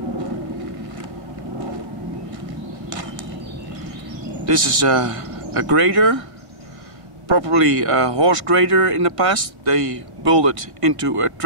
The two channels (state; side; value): late; left; 1.6 ms